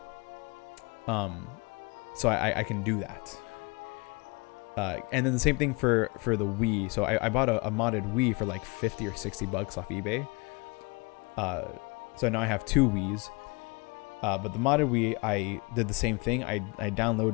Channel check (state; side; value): quieter; right; 29.0 dB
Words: So I can do that. And then the same thing for the Wii. So I bought a modded Wii for like $50 or $60 off eBay. So now I have 2 Wiis. But the modded Wii, I did the same thing. I